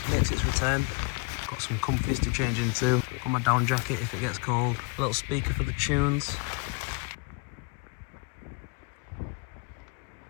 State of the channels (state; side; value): quieter; right; 30.1 dB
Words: makes its return. Got some comfies to change into. Got my down jacket if it gets cold. A little speaker for the tunes.